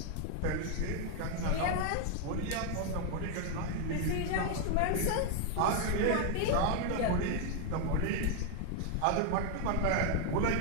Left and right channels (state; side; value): different; both; correlation 0.00